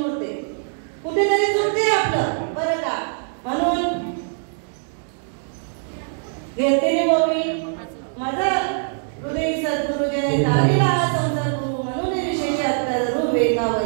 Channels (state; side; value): silent; left; digital silence